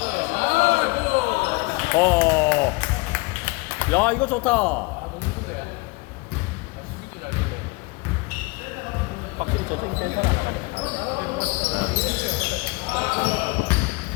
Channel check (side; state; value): right; quieter; 25.9 dB